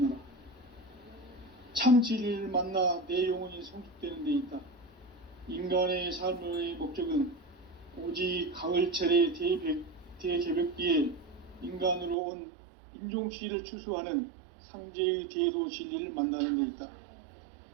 참 진리를 만나 내 영혼이 성숙되는 데 있다. 인간의 삶의 목적은 오직 가을철의 대개벽기에 인간으로 온 인종씨를 추수하는 상제의 대도 진리를 만나는 데 있다.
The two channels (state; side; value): drops out; left; at 12.2 s